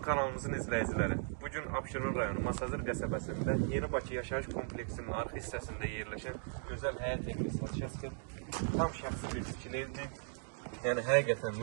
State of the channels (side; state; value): left; silent; 53 dB below the other